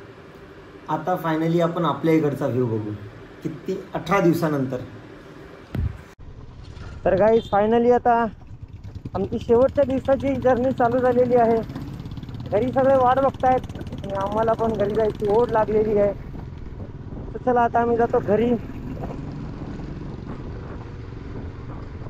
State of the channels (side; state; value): both; identical; correlation 1.00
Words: आता फायनली आपण आपल्या इकडचा व्ह्यू बघू. किती 18 दिवसानंतर. तर गाईज फायनली आता आमची शेवटच्या दिवसाची जर्नी चालू झालेली आहे. घरी सगळे वाट बघतायत आणि आम्हाला पण घरी जायची ओढ लागलेली आहे. तर चला आता आम्ही जातो घरी.